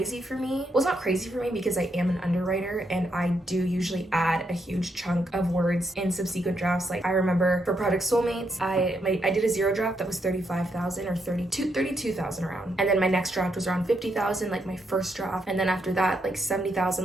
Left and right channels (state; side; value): normal; both; correlation 0.79